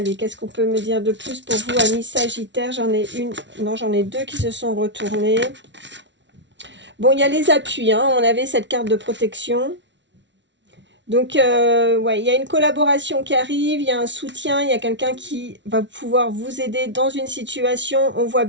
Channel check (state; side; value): late; left; 0.52 ms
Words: qu'est-ce qu'on peut me dire de plus pour vous, amis Sagittaires? J'en ai une, non j'en ai deux qui se sont retournés. Bon, il y a les appuis, hein. On avait cette carte de protection. Donc, ouais, il y a une collaboration qui arrive, il y a un soutien, il y a quelqu'un qui va pouvoir vous aider dans une situation. On voit